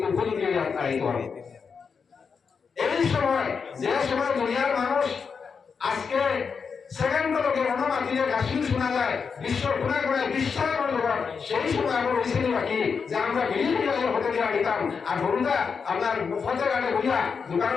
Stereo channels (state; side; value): quieter; right; 5.8 dB